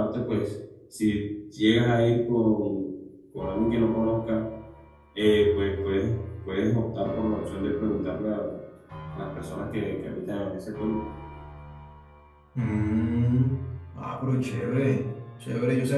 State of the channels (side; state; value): both; identical; correlation 1.00